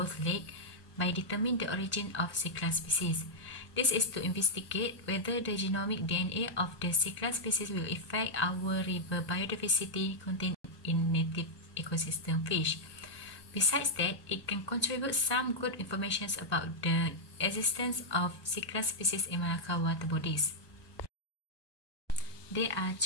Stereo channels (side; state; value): right; late; 1.2 ms